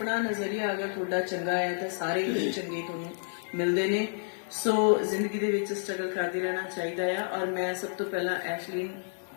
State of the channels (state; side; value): silent; right; digital silence